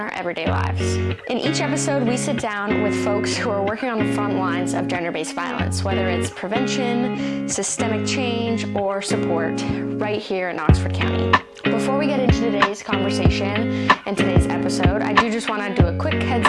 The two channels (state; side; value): identical; both; correlation 1.00